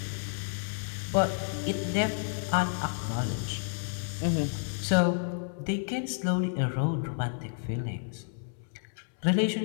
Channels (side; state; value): right; silent; digital silence